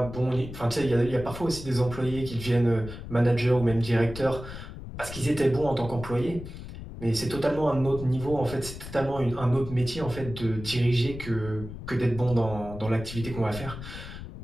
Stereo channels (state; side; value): noise; left; rumble, 11 dB below the sound